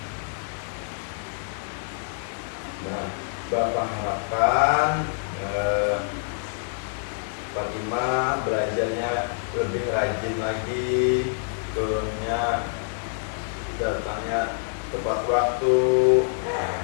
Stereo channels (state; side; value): silent; right; 61 dB below the other